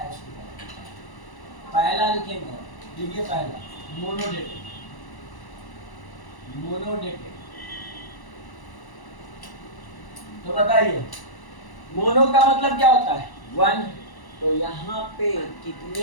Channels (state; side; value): late; right; 1.1 ms